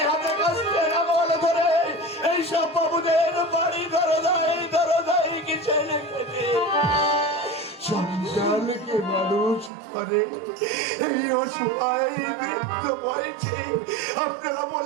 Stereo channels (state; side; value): drops out; left; at 9.7 s